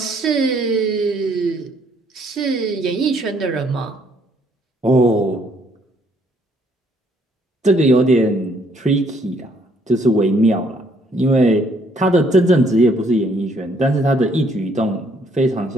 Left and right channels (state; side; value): normal; both; correlation 0.66